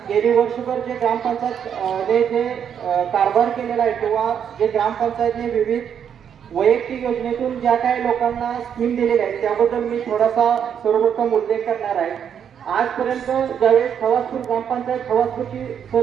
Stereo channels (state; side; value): quieter; left; 8.3 dB